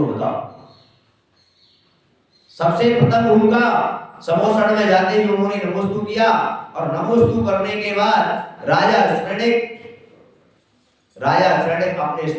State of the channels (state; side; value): identical; both; correlation 1.00